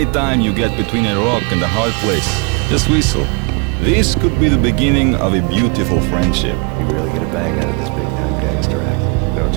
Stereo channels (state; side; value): quieter; left; 30.6 dB